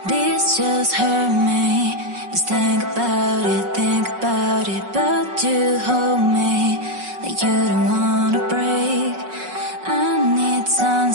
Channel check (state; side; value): late; left; 5.4 ms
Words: This just hurt me. Just think about it, but you hold me like you don't wanna break. I need some